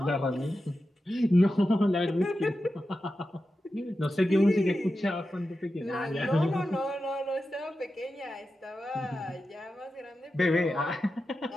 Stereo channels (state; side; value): normal; both; correlation 0.91